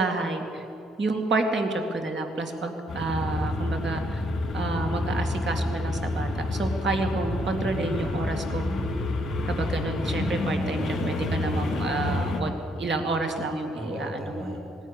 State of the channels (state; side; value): normal; both; correlation 0.71